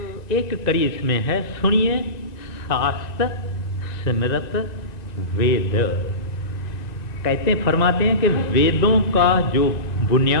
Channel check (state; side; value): late; right; 1.9 ms